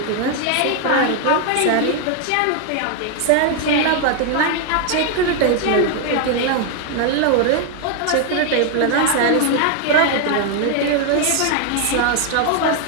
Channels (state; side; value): different; both; correlation 0.00